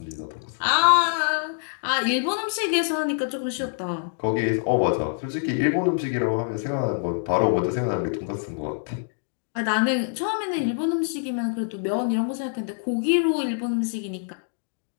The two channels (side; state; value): right; silent; digital silence